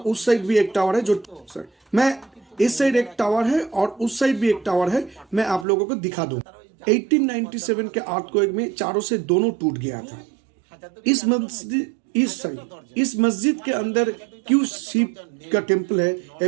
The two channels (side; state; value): left; drops out; at 5.7 s